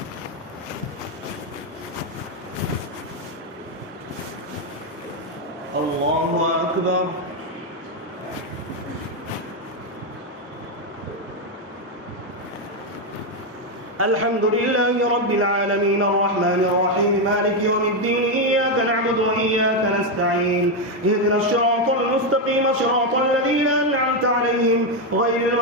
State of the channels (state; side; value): normal; both; correlation 0.05